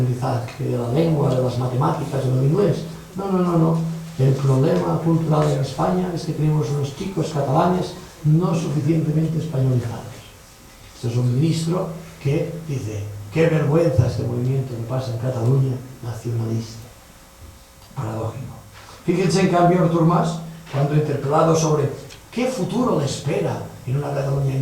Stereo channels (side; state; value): both; identical; correlation 1.00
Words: de la lengua, de las matemáticas o del inglés. No. El problema cultural en España es que tenemos unos chicos catalanes no suficientemente españolizados. Este es un ministro que dice, qué vergüenza este movimiento que pasa en Cataluña, nacionalista. Paradójico. Fíjense en cambio Artur Mas, cuando interpelado sobre qué futuro le espera en una Cataluña